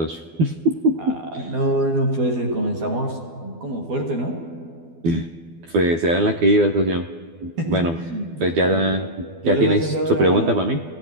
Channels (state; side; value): late; left; 12 ms